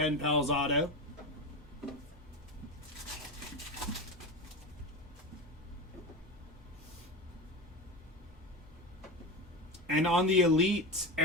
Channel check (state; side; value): normal; both; correlation 0.22